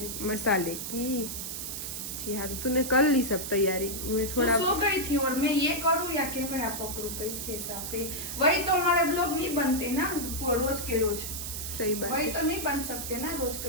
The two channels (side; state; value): right; noise; hiss, 5 dB below the sound